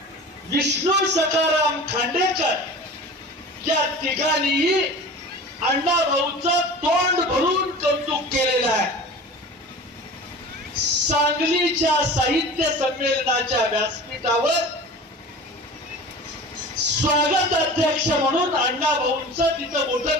विष्णू सखाराम खांडेकर या तिघांनीही अण्णाभाऊचं तोंड भरून कौतुक केलेलं आहे. सांगलीच्या साहित्य संमेलनाच्या व्यासपीठावर स्वागत अध्यक्ष म्हणून अण्णाभाऊंचं तिथं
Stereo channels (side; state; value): both; normal; correlation 0.37